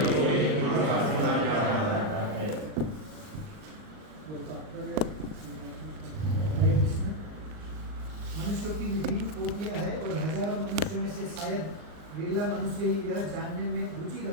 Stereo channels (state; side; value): late; left; 39 ms